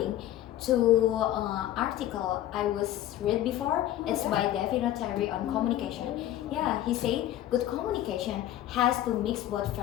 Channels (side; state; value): right; quieter; 13.1 dB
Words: to article I was read before. It's by David Terry on communication. Yeah, he said good communication has to mix both